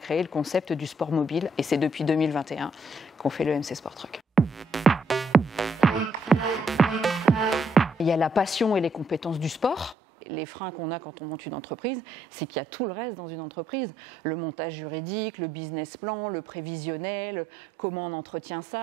le concept du sport mobile. Et c'est depuis 2021 qu'on fait le MC Sport Truck. Il y a la passion et les compétences du sport. Les freins qu'on a quand on monte une entreprise, c'est qu'il y a tout le reste dans une entreprise. Le montage juridique, le business plan, le prévisionnel, comment on entretient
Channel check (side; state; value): left; drops out; at 10.0 s